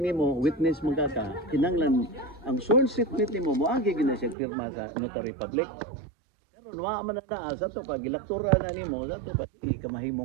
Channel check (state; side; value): drops out; left; at 4.4 s